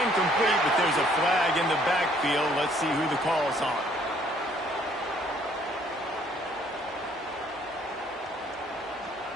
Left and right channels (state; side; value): normal; both; correlation 0.62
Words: but there's a flag in the backfield. Let's see who the call's on.